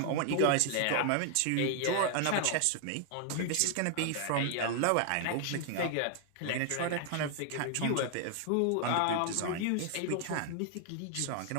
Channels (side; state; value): both; different; correlation 0.00